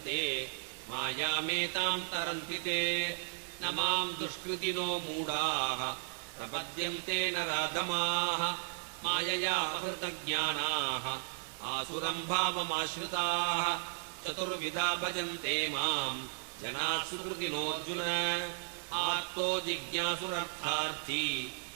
मायामेतां तरन्ति ते न मां दुष्कृतिनो मूढाः प्रपद्यन्ते नराधमाः मायया हृतज्ञानाः आसुरं भावमाश्रिताः चतुर्विधा भजन्ते मां जनाः सुकृतिनोऽर्जुन आर्तो जिज्ञासुरर्थार्थी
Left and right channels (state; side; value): silent; left; digital silence